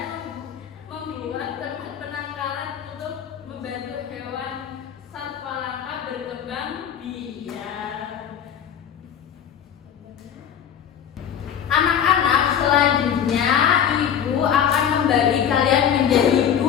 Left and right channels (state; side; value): quieter; right; 8.8 dB